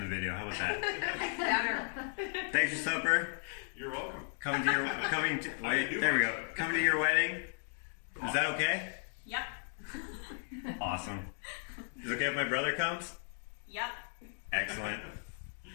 video. How about that? Thanks for supper. You're welcome. Coming to your wedding. Is that okay? Yep. Awesome. Is it okay if my brother comes? Yep. Excellent.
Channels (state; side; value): silent; right; 54 dB below the other